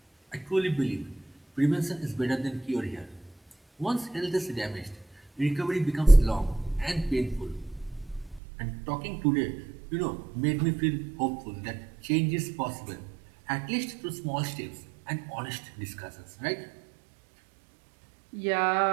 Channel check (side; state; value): left; drops out; at 8.4 s